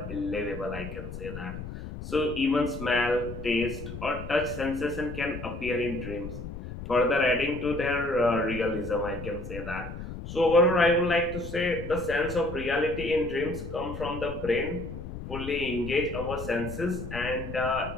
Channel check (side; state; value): left; noise; rumble, 9 dB below the sound